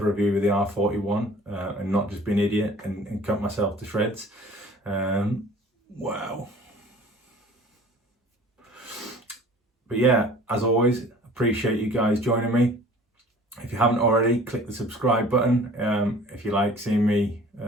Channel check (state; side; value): normal; both; correlation 0.48